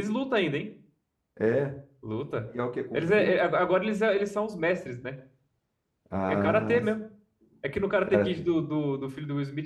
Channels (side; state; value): both; identical; correlation 1.00